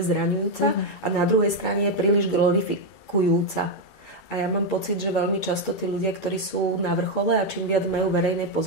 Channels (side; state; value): right; late; 2.3 ms